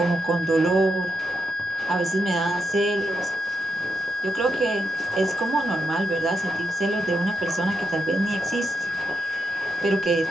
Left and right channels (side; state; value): both; normal; correlation 0.83